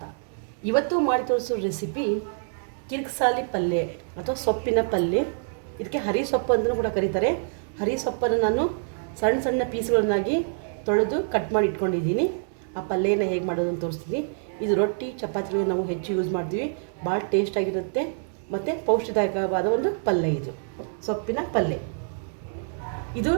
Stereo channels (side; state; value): left; silent; digital silence